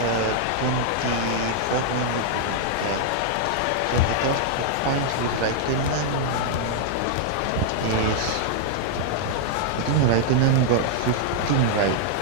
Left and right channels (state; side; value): different; both; correlation -0.01